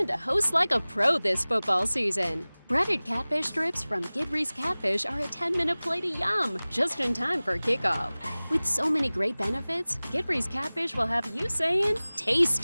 to host like a pro this football season. Breaded catfish strips from Gidry's Catfish are a 10-minute plate of yum, just in time for kickoff. With so many great benefits, Gidry's Catfish will have you saying, taste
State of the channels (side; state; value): both; inverted; correlation -0.99